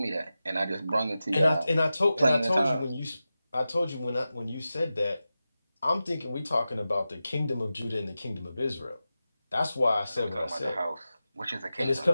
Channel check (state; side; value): inverted; both; correlation -0.93